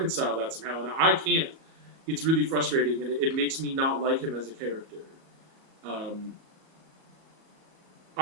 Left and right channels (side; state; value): left; late; 37 ms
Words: that somehow. And I can't. It's really frustrating. And it makes me not like him as a character.